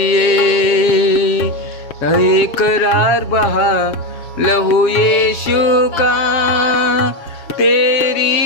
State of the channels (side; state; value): right; late; 7.3 ms